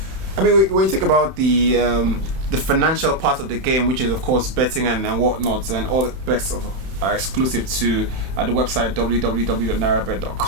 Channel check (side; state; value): left; late; 31 ms